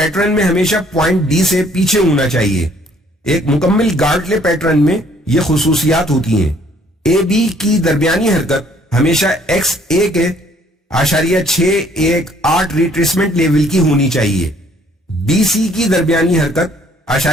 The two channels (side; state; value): both; normal; correlation 0.62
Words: میں ہمیشہ پوائنٹ D سے پیچھے ہونا چاہیے۔ ایک مکمل گارٹلے پیٹرن میں یہ خصوصیات ہوتی ہیں۔ AB کی درمیانی حرکت ہمیشہ XA کے .618 ریٹریسمنٹ لیول کی ہونی چاہیے۔ BC کی درمیانی حرکت